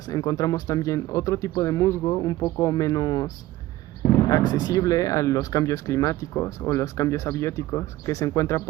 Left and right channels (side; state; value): left; quieter; 16.2 dB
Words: encontramos también otro tipo de musgo un poco menos accesible a los cambios climáticos o los cambios abióticos, que se encuentra